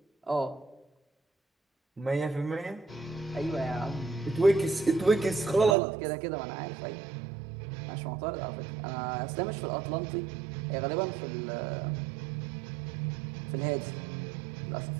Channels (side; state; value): left; drops out; at 5.8 s